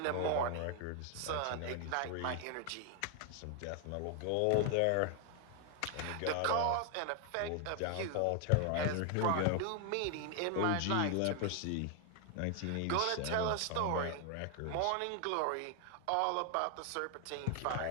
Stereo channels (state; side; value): different; both; correlation 0.00